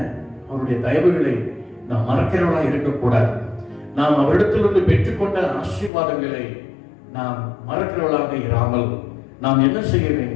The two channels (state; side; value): drops out; right; at 5.9 s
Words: அவருடைய தயவுகளை நாம் மறக்கிறவர்களாக இருக்கக்கூடாது. நாம் அவரிடத்திலிருந்து பெற்றுக்கொண்ட ஆசீர்வாதங்களை நாம் மறக்கிறவர்களாக இராமல் நாம் என்ன செய்ய